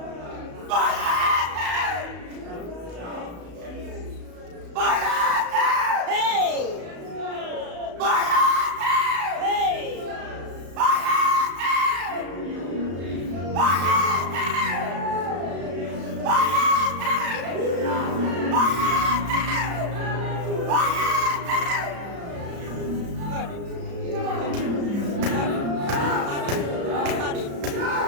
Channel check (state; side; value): late; left; 34 ms